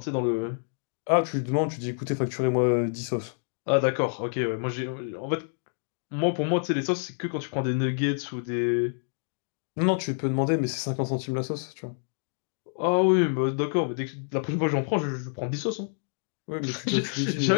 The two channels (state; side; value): silent; right; digital silence